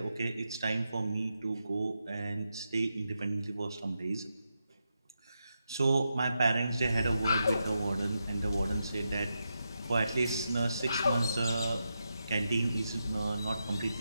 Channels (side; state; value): both; inverted; correlation -0.86